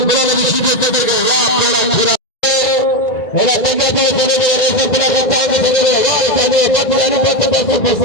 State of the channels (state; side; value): late; right; 1.9 ms